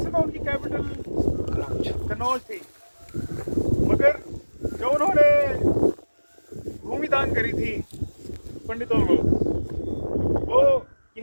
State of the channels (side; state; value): both; inverted; correlation -1.00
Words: तो उनकी कैपिटल कनौज थी, मगर जो उन्होंने भूमि दान करी थी पंडितों को, वो